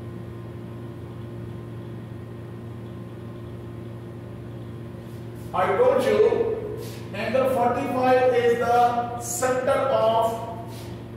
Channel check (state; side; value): identical; both; correlation 1.00